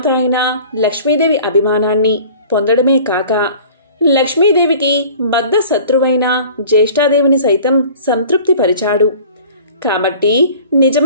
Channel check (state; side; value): inverted; both; correlation -0.46